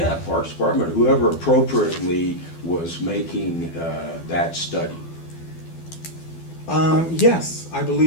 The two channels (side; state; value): right; late; 12 ms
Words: Parks Department, whoever appropriately was making that study. Yes, I